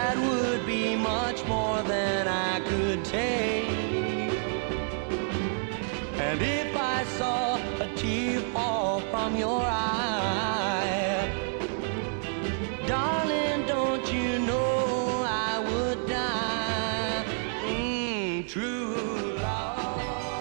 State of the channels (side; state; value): left; silent; digital silence